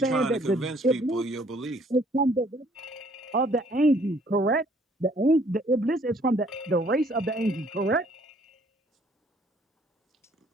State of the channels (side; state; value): both; normal; correlation 0.61